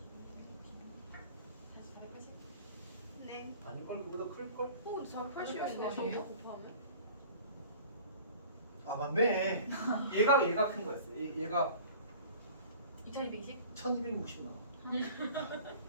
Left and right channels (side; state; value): both; inverted; correlation -0.45